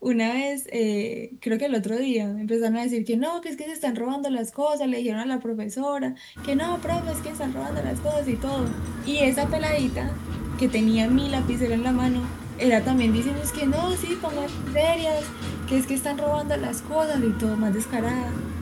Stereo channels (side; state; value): both; identical; correlation 1.00